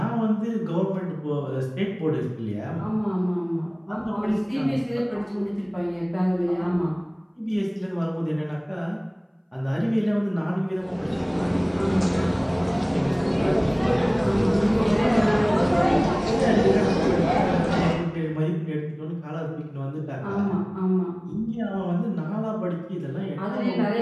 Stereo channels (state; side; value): identical; both; correlation 1.00